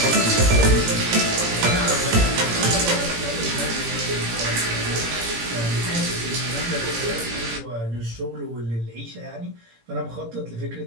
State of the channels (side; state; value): left; late; 17 ms